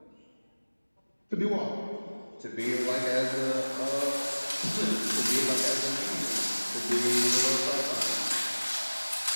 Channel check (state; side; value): inverted; both; correlation -1.00